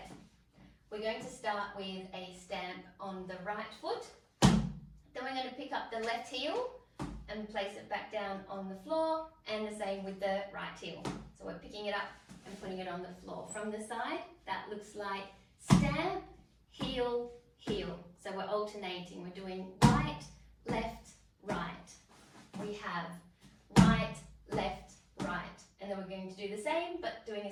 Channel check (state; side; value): identical; both; correlation 1.00